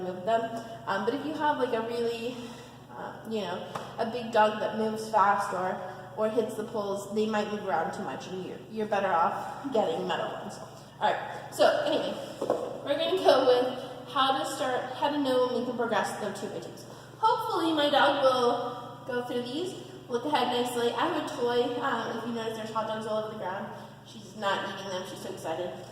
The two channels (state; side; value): identical; both; correlation 1.00